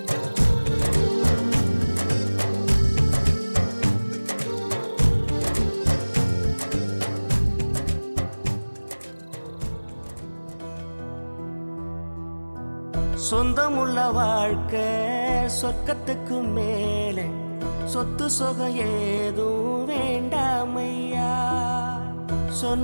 சொந்தமுள்ள வாழ்க்கை சொர்க்கத்துக்கு மேலே சொத்து சொகம் ஏதும் வேண்டாமையா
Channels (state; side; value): inverted; both; correlation -1.00